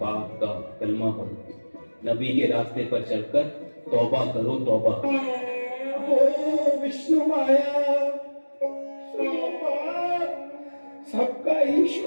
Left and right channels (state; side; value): inverted; both; correlation -1.00